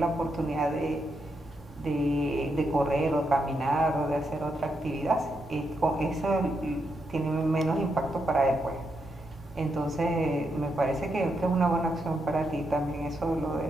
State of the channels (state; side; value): normal; both; correlation 0.82